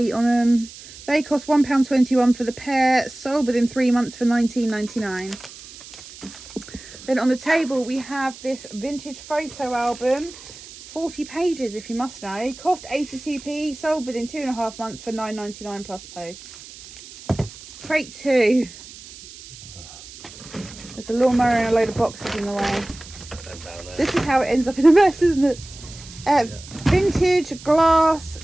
on them. They cost £1.21 for the pair, sold within 3 months for £19.99. Then on the table we have this vintage photo album, 40 pages if you must know, cost 82p, sold within 2.5 months for £9.99 plus post. Crate 2. There's a lawnmower and a load of boxes in the way. This is how it ends up in a mess, isn't it? Vintage glass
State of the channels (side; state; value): right; noise; hiss, 17 dB below the sound